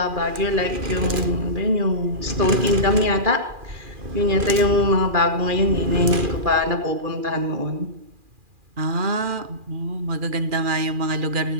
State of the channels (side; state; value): left; late; 2.4 ms